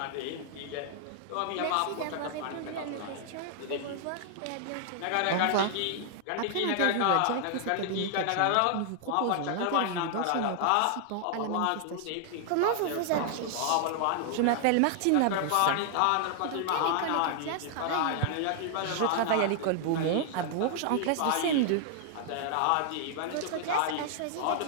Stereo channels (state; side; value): different; both; correlation 0.00